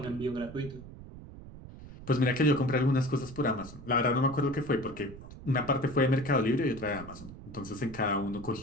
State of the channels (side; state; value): right; noise; rumble, 15 dB below the sound